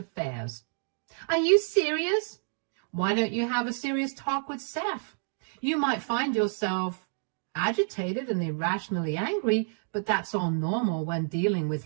Are you serious? Why don't you have a serious talk with Seth? You might find yourself agitated and irrationally angry, but that's all normal when dealing with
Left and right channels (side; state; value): left; silent; digital silence